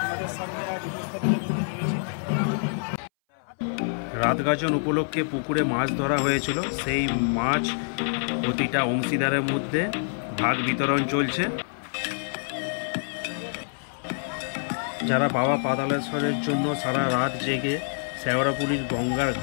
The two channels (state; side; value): silent; right; 60 dB below the other